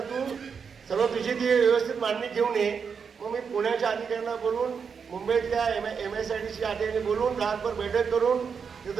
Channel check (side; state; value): left; quieter; 6.2 dB